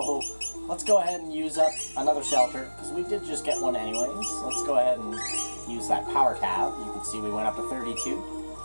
let's go ahead and use up another shelter, because we did just get one anyways. Let's go ahead and use that power tab. You can see we went up to 32.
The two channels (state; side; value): inverted; both; correlation -1.00